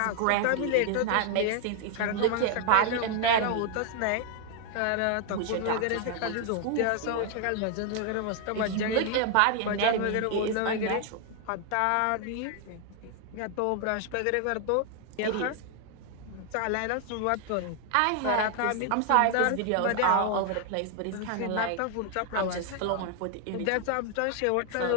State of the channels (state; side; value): different; both; correlation 0.00